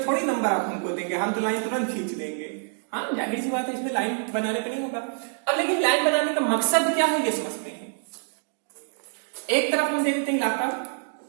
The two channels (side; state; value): left; silent; digital silence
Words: थोड़ी नंबर आप हमको देंगे, हम तो लाइन तुरंत खींच देंगे। हाँ जाहिर सी बात है, इसमें लाइन बनाने पे नहीं होगा। अब लेकिन लाइन बनाने का मकसद क्या है ये समझते हैं। एक तरफ हम दे देते हैं इलाका